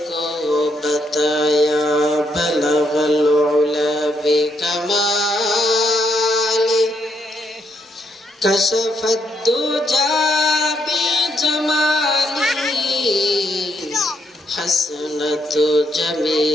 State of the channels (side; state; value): both; normal; correlation 0.76